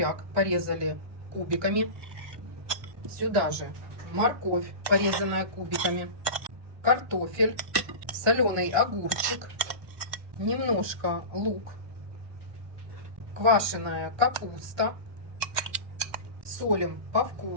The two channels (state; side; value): late; left; 1.2 ms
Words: порезали кубиками. Сюда же морковь, порезанная кубиками. Картофель, соленый огурчик, немножко лук, квашеная капуста. Солим по